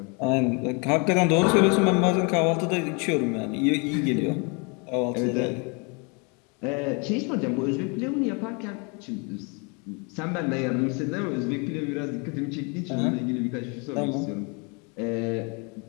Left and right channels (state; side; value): quieter; right; 32.9 dB